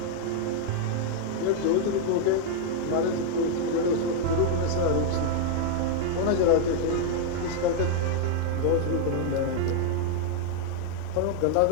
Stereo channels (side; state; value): both; different; correlation 0.00